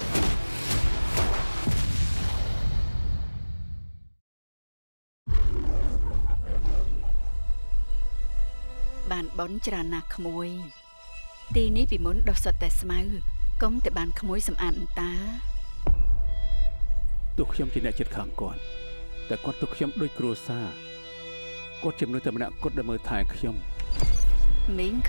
បានបនច្រើនណាស់ក្មួយទីនេះពីមុនដុះសុទ្ធតែស្មៅកុំតែបានក្មួយសម្អាតអន្តាទោះខ្ញុំជាអ្នកចិត្តខាងគាត់តែគាត់ទុកខ្ញុំដូចគ្រួសារគាត់ជាមនុស្សតែម្នាក់គត់ដែលមើលថែខ្ញុំមីង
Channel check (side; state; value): both; inverted; correlation -1.00